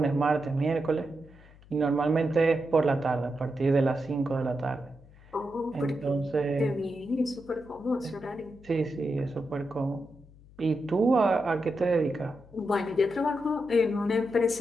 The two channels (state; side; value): noise; left; hum, 24 dB below the sound